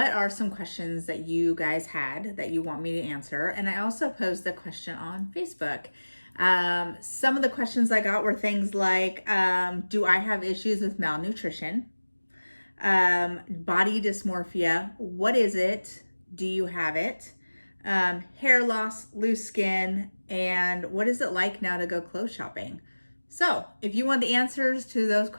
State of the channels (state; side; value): inverted; both; correlation -1.00